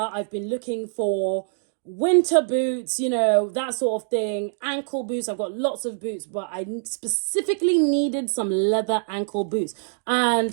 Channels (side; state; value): left; silent; digital silence